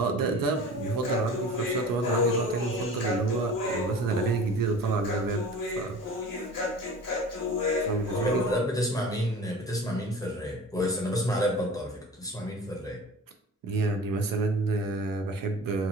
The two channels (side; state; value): both; normal; correlation 0.39